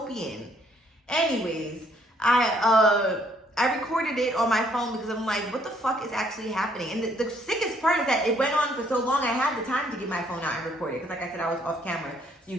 Anyways, I recorded it on my phone because I'm like, what the fuck is actually happening? And the sickest part is that it went on for so long, I had the time to get my phone out and record it. Because like I said, I was off camera, so you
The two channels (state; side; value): normal; both; correlation 0.66